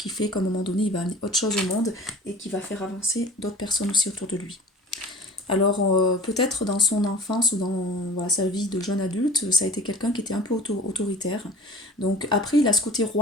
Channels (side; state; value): both; normal; correlation 0.41